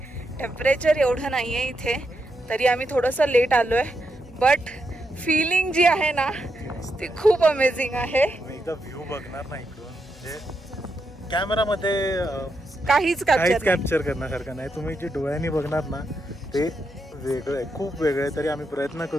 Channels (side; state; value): both; normal; correlation 0.83